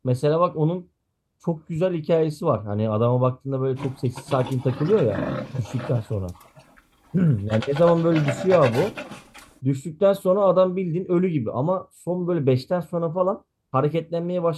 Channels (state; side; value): identical; both; correlation 1.00